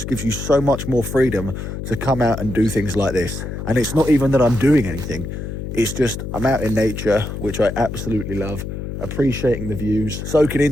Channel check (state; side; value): noise; left; hum, 6 dB below the sound